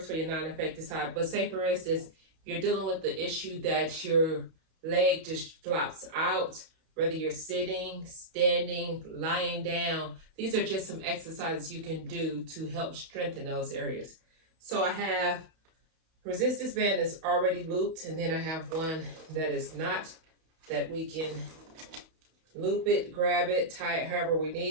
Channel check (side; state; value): left; late; 31 ms